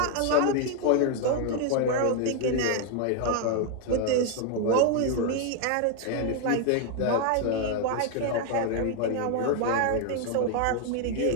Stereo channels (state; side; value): different; both; correlation 0.00